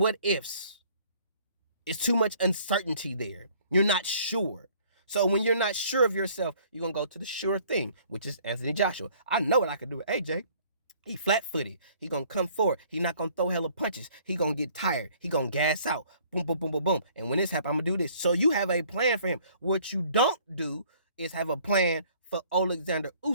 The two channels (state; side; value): inverted; both; correlation -0.57